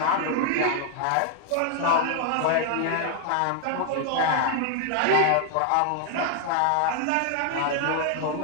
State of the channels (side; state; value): both; different; correlation 0.00